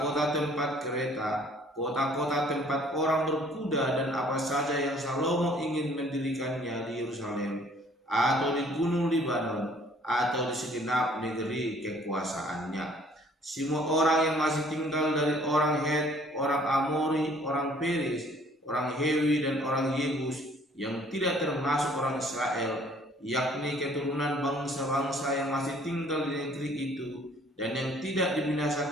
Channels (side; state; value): both; normal; correlation 0.57